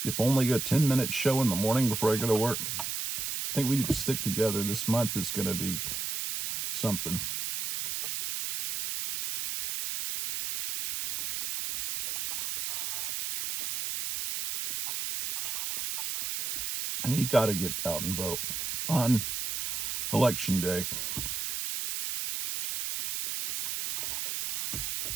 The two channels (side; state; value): right; noise; hiss, 2 dB below the sound